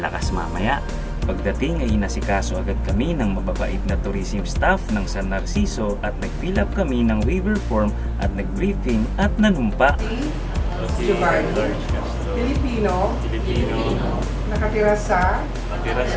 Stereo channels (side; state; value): both; identical; correlation 1.00